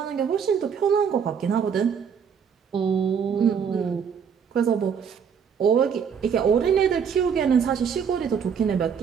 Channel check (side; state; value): left; quieter; 7.0 dB